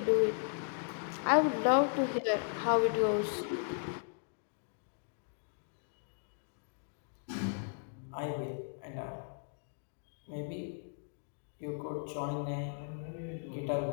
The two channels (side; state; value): right; silent; digital silence